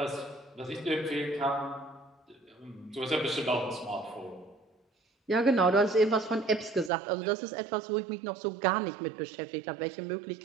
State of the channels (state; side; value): drops out; left; at 6.9 s